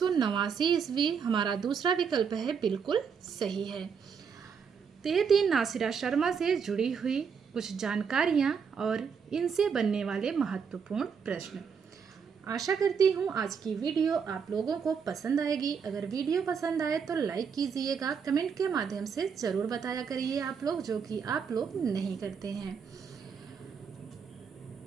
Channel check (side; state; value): left; quieter; 6.4 dB